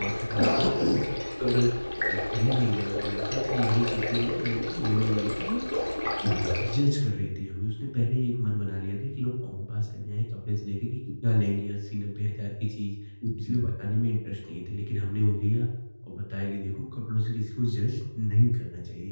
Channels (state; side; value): inverted; both; correlation -1.00